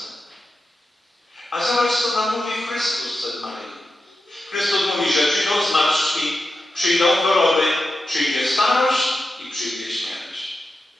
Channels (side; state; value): both; normal; correlation 0.90